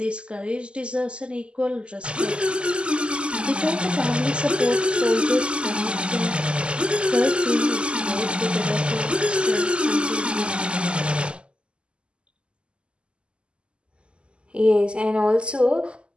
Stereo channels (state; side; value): late; left; 0.052 ms